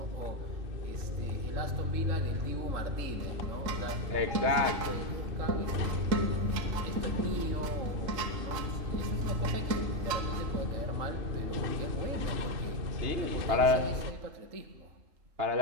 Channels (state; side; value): late; left; 3.8 ms